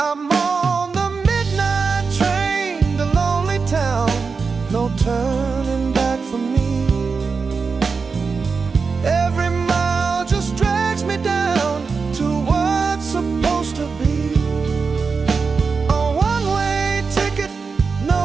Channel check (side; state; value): left; quieter; 4.9 dB